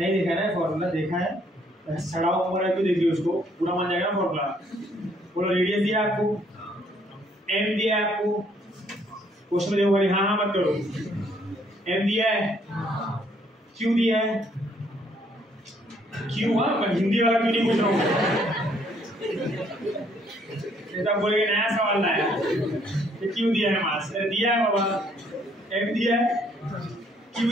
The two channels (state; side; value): normal; both; correlation 0.66